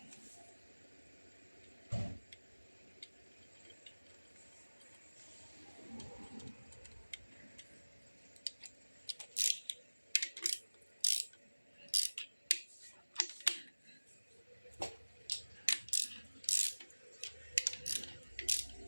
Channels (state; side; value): inverted; both; correlation -1.00